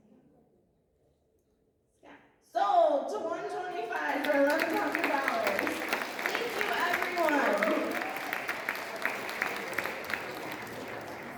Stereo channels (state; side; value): identical; both; correlation 1.00